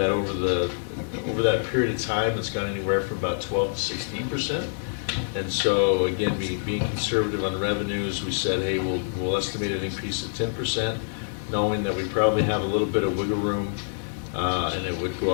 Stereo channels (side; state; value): right; silent; digital silence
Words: over that period of time, it's gone anywhere from about 12 to 16%. And so again, being conservative on revenues, we said, hey, we'll estimate an increase of 10%, knowing that we probably have a little bit of wiggle room, and it would go